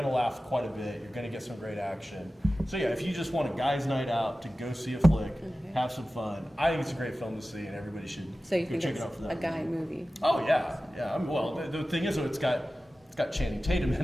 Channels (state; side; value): normal; both; correlation 0.95